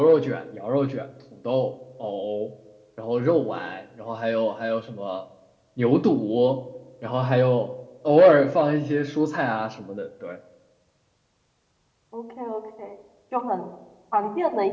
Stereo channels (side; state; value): both; identical; correlation 1.00